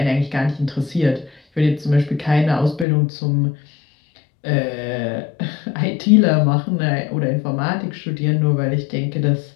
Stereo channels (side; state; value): right; drops out; at 2.9 s